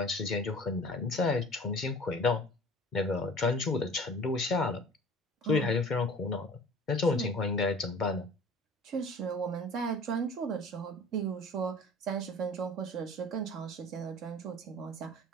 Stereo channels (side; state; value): both; normal; correlation 0.44